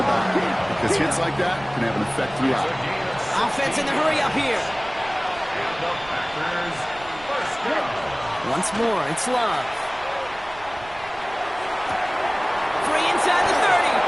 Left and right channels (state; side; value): noise; right; rumble, 20 dB below the sound